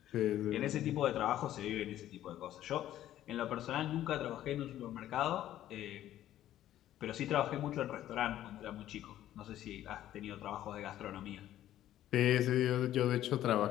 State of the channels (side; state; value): right; quieter; 12.7 dB